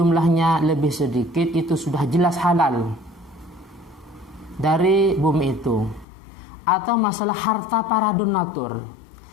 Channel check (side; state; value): right; drops out; at 6.1 s